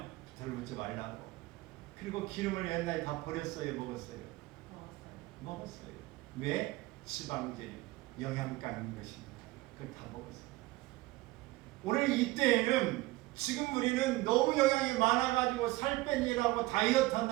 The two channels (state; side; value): quieter; left; 19.8 dB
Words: 들붙지 말라고. 그리고 기름을 옛날에 다 버렸어요, 먹었어요? 먹었어요. 왜? 지방질, 영양가 있는 것입니다. 그걸 다 먹었어요. 오늘 이때에는 지금 우리는 너무 영양이 많아가지고 살 빼니라고 다이어트